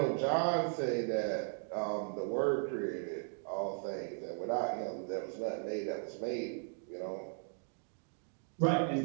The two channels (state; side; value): silent; left; 53 dB below the other